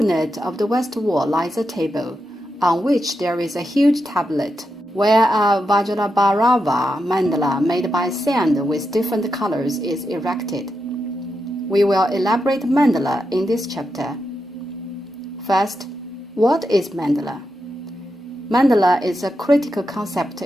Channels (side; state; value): both; normal; correlation 0.87